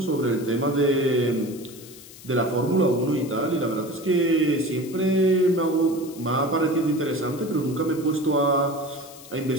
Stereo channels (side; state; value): left; noise; hiss, 18 dB below the sound